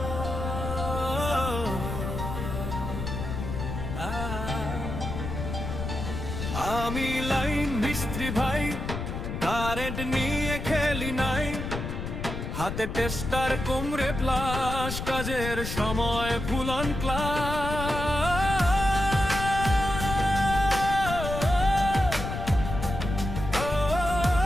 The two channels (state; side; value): noise; left; rumble, 5 dB below the sound